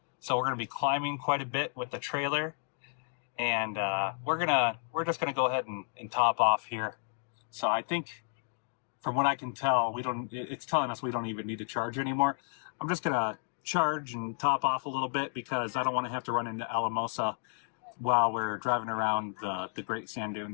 So we're going to be climbing quite a bit with the trailer. And we're just gonna go ahead and top off here. So I think, from what I can tell, it's telling us we don't even need to charge anymore. I'm just gonna charge and top off a little bit because I don't want to have to run into Alamosa while we're driving around the Great Sand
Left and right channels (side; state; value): right; silent; digital silence